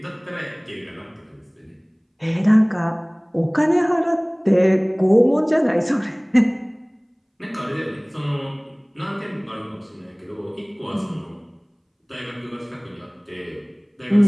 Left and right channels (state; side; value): identical; both; correlation 1.00